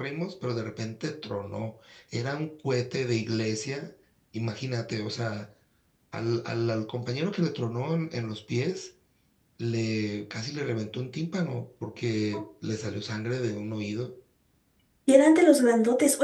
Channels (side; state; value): both; identical; correlation 1.00